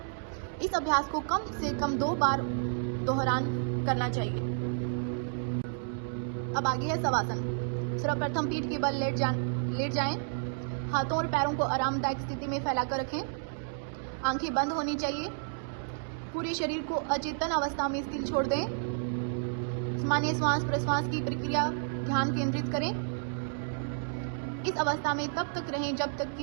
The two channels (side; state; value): left; silent; digital silence